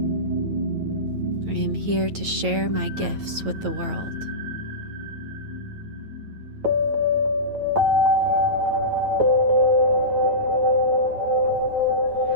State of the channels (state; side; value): late; left; 9.2 ms